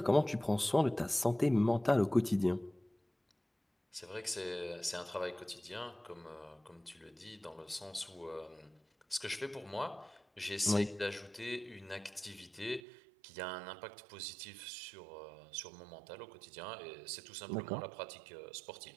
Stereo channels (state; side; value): drops out; left; at 12.8 s